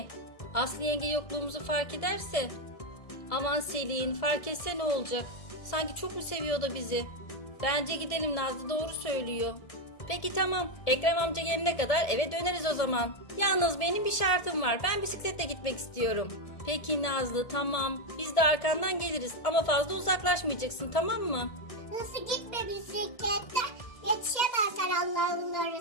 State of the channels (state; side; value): late; right; 1.7 ms